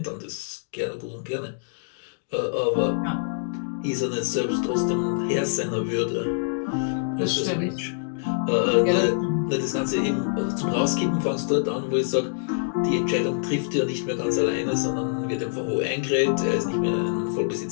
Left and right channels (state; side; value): silent; right; digital silence